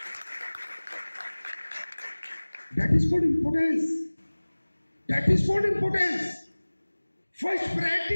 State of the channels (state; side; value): inverted; both; correlation -1.00